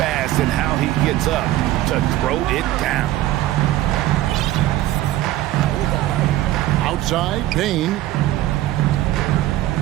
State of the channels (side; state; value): left; quieter; 14.8 dB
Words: in how he gets up to throw it down. Outside, Bain.